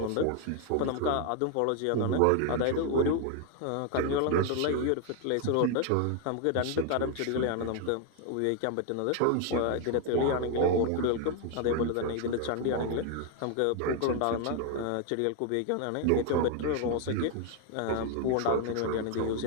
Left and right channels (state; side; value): different; both; correlation 0.01